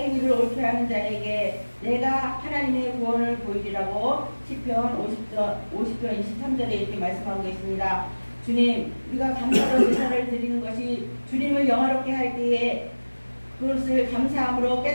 옳게 하는 자에게 내가 하나님의 구원을 보이리라고 시편 50편 23절에 이렇게 말씀하고 계십니다. 주님, 우리가 감사로 제사를 드리는 것이 주님을 영화롭게 할 때에 그것을 감사함으로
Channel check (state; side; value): inverted; both; correlation -1.00